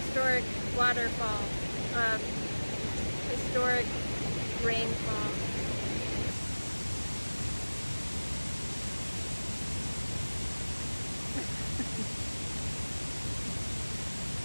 waterfall, historic rainfall.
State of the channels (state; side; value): inverted; both; correlation -1.00